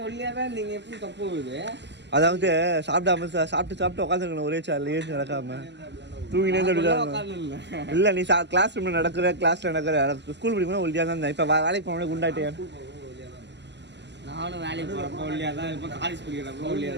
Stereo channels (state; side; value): late; left; 0.51 ms